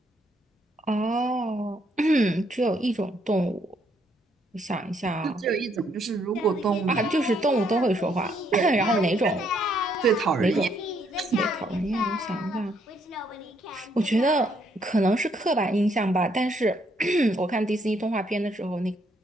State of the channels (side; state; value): both; normal; correlation 0.71